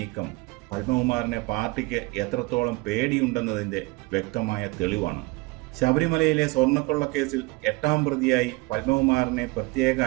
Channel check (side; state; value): left; quieter; 24.5 dB